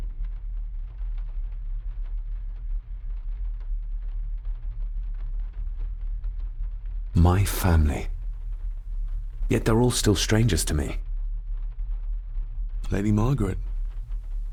My family. Yet they're all still strangers to me. Lady Margaret.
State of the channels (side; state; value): both; identical; correlation 1.00